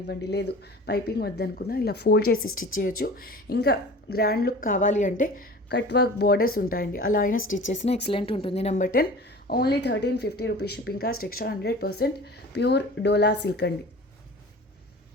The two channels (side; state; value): both; normal; correlation 0.40